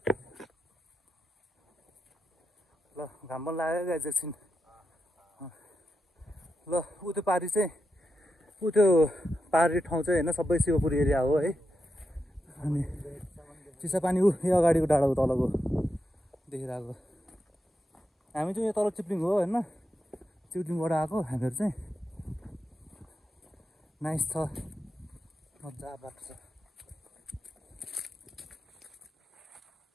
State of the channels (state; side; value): normal; both; correlation 0.87